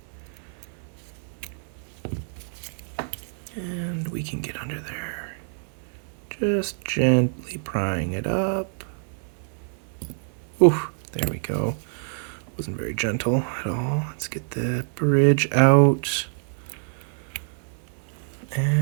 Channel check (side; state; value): left; silent; 61 dB below the other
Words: And we can get under there. Just gently prying it up. Ooh, there we go. Wasn't very gentle at all. Let's get the bridge out.